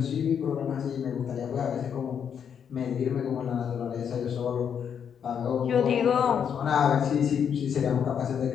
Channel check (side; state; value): right; quieter; 7.8 dB